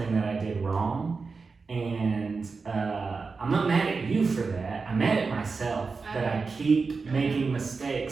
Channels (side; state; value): left; quieter; 4.5 dB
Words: that I did wrong. And I'm not mad at you for that. I'm mad at myself that I keep making